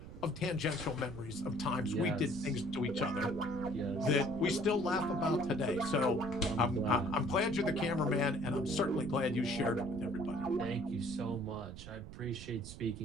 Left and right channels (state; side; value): noise; right; rumble, 12 dB below the sound